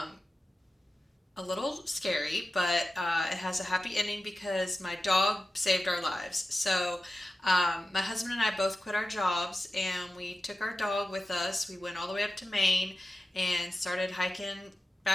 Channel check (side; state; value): both; normal; correlation 0.94